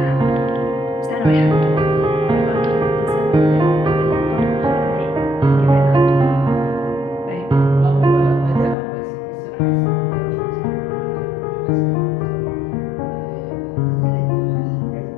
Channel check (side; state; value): right; drops out; at 8.8 s